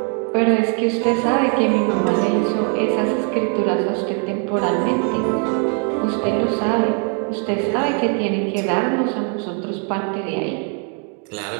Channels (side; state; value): left; quieter; 39.3 dB